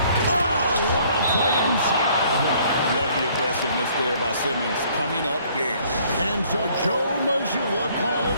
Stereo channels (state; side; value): inverted; both; correlation -0.61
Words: Oh, what a play inside. Love the aggressiveness defense there by Simmons coming up big. And so Joe Mazzulla